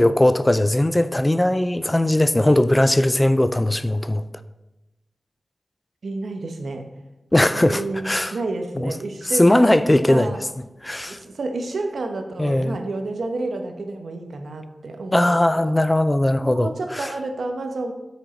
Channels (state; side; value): normal; both; correlation 0.98